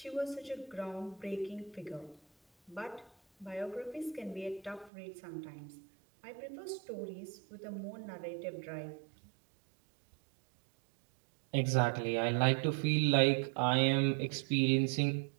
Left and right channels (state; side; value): drops out; left; at 4.9 s